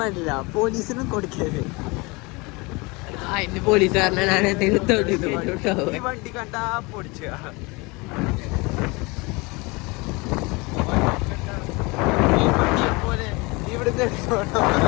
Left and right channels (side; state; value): right; quieter; 26.0 dB